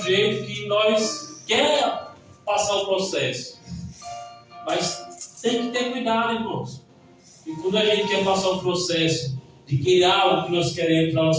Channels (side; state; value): both; identical; correlation 1.00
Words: jeito, que nós quer passar o processo. Mas tem que ter cuidado, irmãos. E quando a gente quer passar o processo de querer algo que nós queremos para a